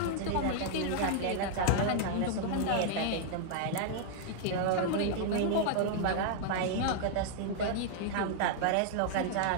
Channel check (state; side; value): different; both; correlation -0.01